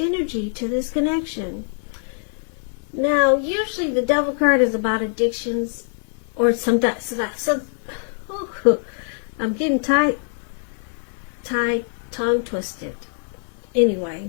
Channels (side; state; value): right; silent; 57 dB below the other